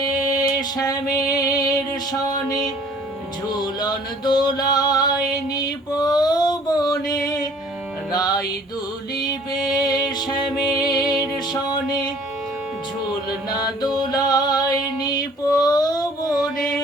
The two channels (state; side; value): normal; both; correlation 0.54